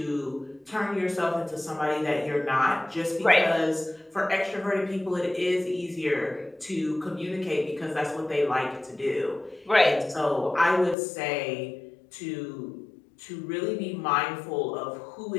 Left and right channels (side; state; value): right; drops out; at 11.0 s